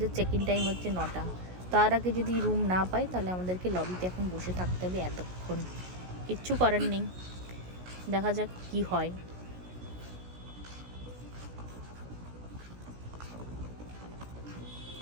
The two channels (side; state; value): left; late; 16 ms